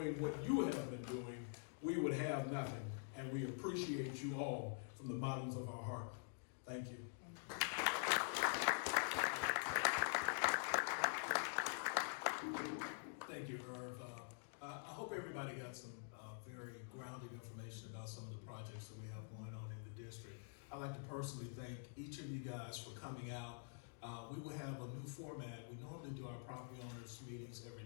what you have been doing, we would have nothing. And we appreciate you all from the bottoms of our heart. Thank you. Thank you, Irv. I hope everybody got some very grounded information about some of the projects that we have going on in the district. I'd like to personally thank each of you guys for coming out. We will have a new format. We normally do our property owners meetings every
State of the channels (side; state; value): right; silent; digital silence